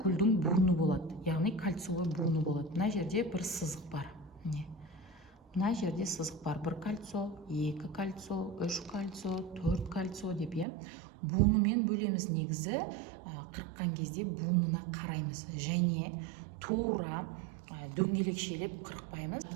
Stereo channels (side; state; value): left; drops out; at 10.7 s